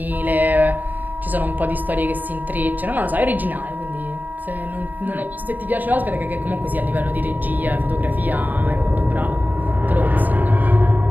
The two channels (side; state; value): left; late; 0.085 ms